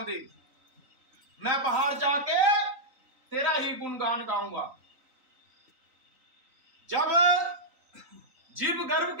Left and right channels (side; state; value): left; late; 3.9 ms